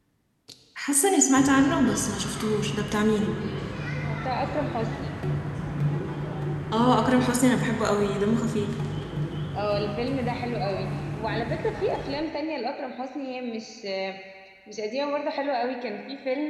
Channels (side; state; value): both; identical; correlation 1.00